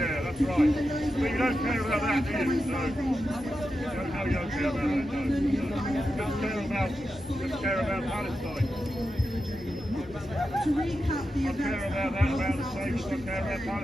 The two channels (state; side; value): normal; both; correlation 0.89